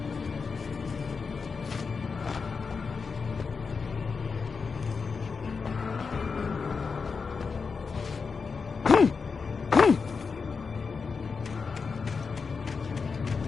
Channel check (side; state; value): right; quieter; 5.1 dB